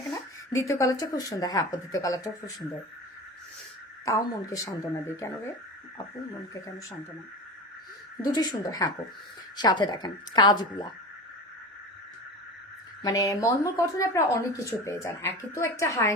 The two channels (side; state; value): both; normal; correlation 0.30